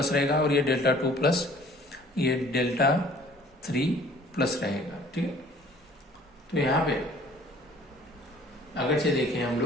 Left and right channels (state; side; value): normal; both; correlation 0.53